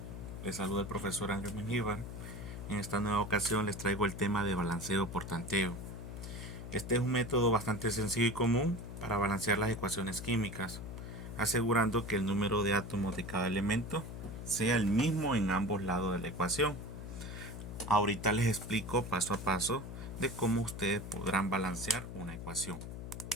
Les saluda el profesor Ángel Mengíbar. En esta nueva ocasión les traigo el tema de balanceo por tanteo. Este es un método bastante sencillo y común para balancear las ecuaciones químicas, asegurando que el número de átomos de cada elemento sea el mismo en ambos lados de la ecuación. Ahorita les explico paso a paso de cómo ustedes podrán balancear una ecuación.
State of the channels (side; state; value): left; noise; hum, 8 dB below the sound